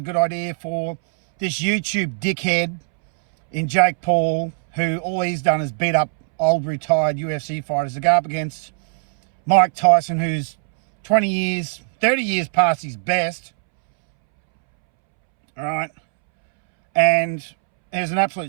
good idea for this YouTube dickhead in Jake Paul, who all he's done is beat up old retired UFC fighters, to go up against Mike Tyson, who's 20 years, 30 years past his best. All right. And is an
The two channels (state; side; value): silent; left; 66 dB below the other